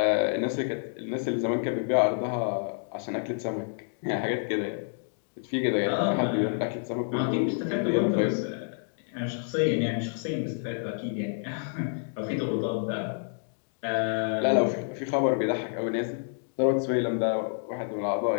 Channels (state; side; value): silent; right; digital silence